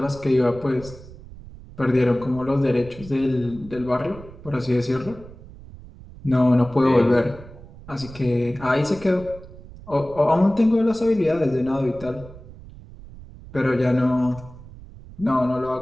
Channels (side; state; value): right; noise; rumble, 18 dB below the sound